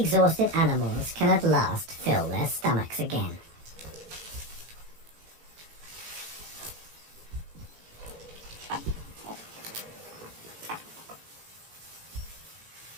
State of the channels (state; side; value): late; left; 18 ms